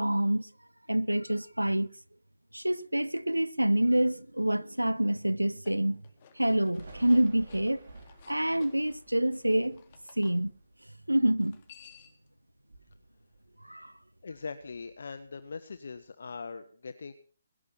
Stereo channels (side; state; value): both; inverted; correlation -1.00